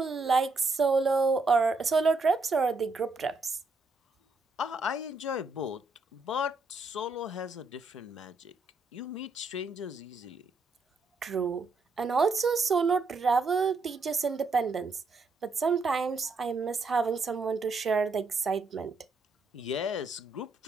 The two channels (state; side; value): quieter; left; 3.5 dB